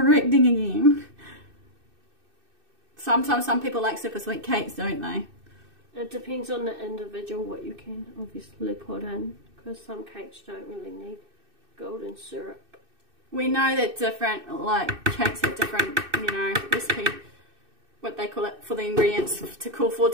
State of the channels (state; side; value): late; left; 2.6 ms